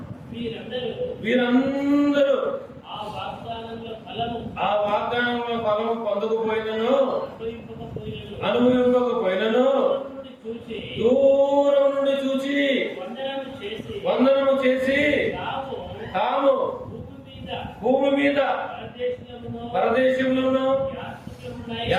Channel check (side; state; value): both; identical; correlation 1.00